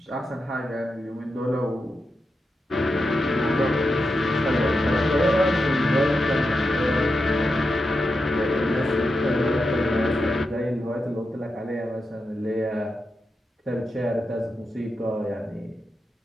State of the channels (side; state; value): both; normal; correlation 0.88